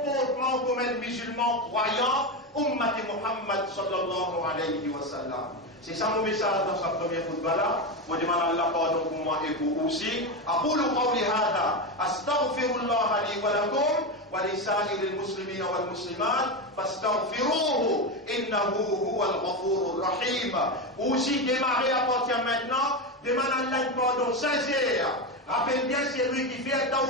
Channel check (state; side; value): normal; both; correlation 0.15